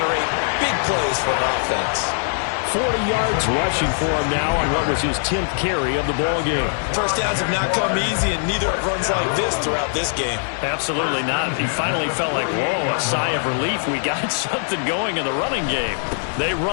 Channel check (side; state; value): right; silent; digital silence